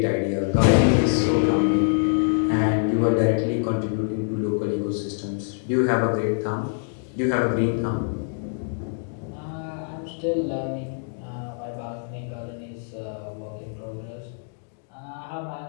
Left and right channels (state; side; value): silent; right; digital silence